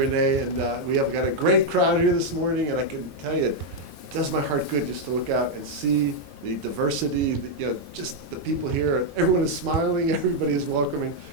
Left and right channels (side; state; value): left; late; 2.6 ms